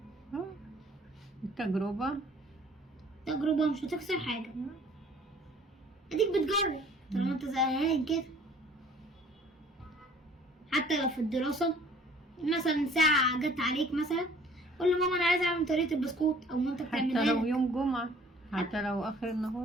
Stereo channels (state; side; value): normal; both; correlation 0.54